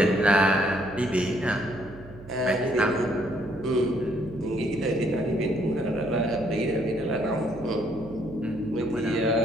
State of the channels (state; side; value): noise; right; hum, 18 dB below the sound